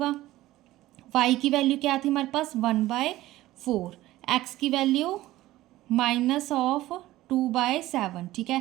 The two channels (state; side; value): quieter; left; 16.3 dB